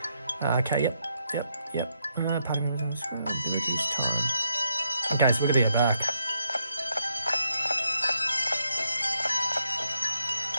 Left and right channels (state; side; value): inverted; both; correlation -0.78